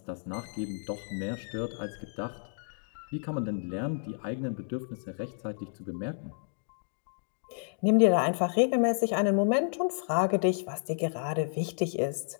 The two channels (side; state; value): right; silent; digital silence